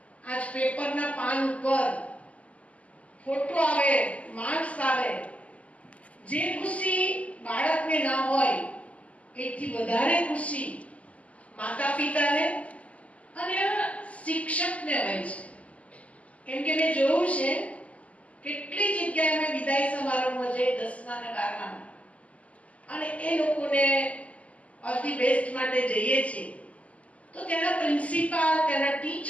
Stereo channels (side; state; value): right; late; 0.067 ms